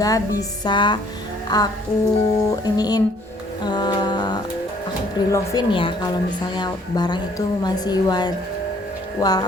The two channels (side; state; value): both; normal; correlation 0.60